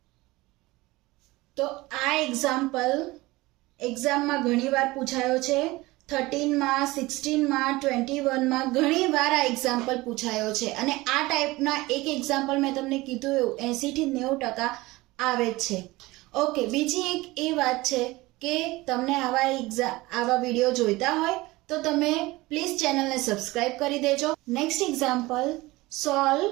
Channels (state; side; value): quieter; left; 20.5 dB